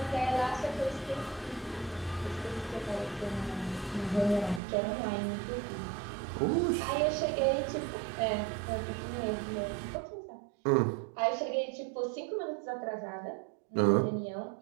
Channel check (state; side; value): drops out; left; at 4.6 s